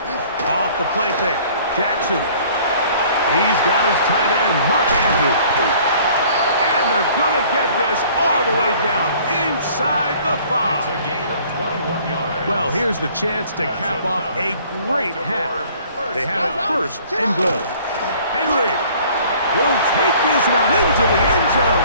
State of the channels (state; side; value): inverted; both; correlation -0.54